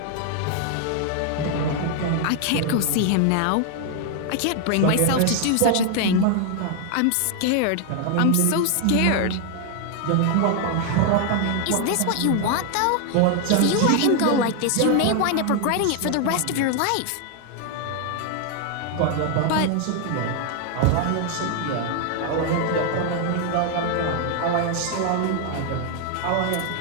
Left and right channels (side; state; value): both; different; correlation 0.00